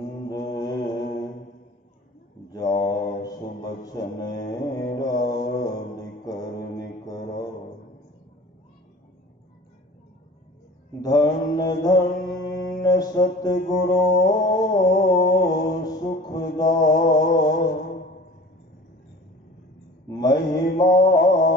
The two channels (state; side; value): normal; both; correlation 0.43